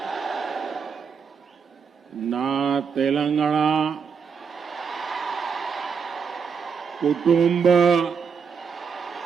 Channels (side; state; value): left; quieter; 6.1 dB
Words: నా తెలంగాణ కుటుంబ